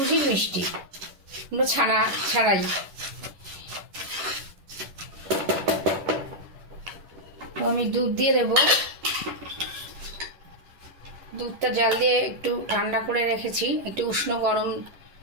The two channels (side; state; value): left; late; 11 ms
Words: মিষ্টি, কোনো ছানা ছাড়াই। তো আমি দুধ দিয়ে দেব। দুধটা জাল দিয়ে একটু ঠান্ডা করে রেখেছি, একটু উষ্ণ গরম